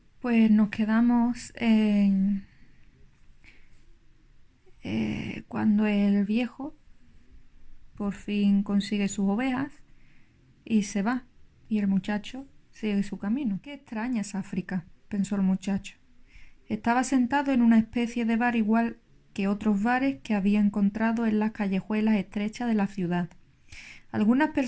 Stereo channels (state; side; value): identical; both; correlation 1.00